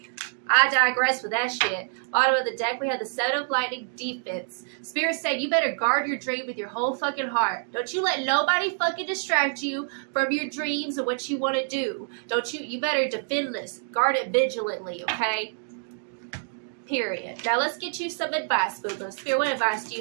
I digress with that shit. Bottom of the deck, we have the Seven of Lightning, defense. Spirit said you better guard your dream with your whole fucking heart. Don't you let nobody fucking distract you from your dreams and what you want to do. You better defend this. Guard it vigilantly, okay? Period. Now let's get you some advice, boo-boo. Spirit, what advice do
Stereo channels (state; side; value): silent; left; digital silence